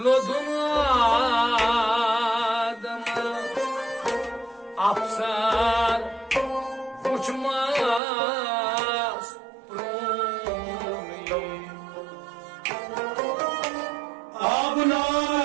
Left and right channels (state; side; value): drops out; left; at 8.0 s